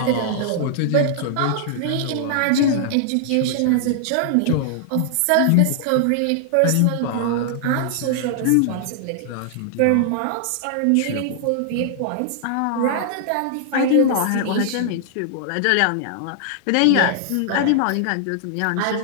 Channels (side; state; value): both; different; correlation -0.01